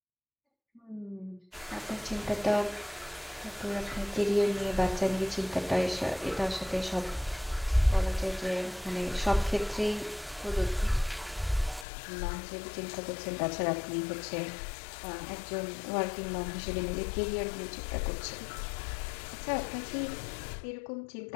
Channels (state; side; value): drops out; right; at 11.9 s